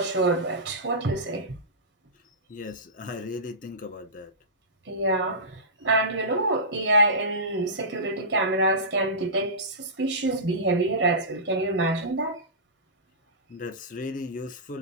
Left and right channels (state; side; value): normal; both; correlation -0.18